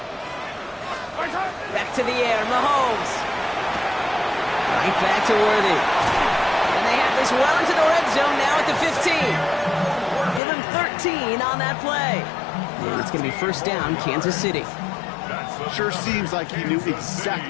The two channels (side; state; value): right; drops out; at 10.4 s